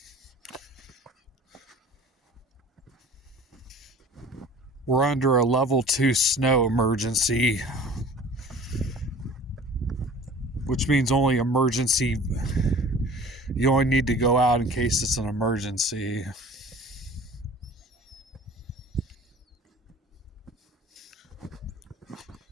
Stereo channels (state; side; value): normal; both; correlation 0.45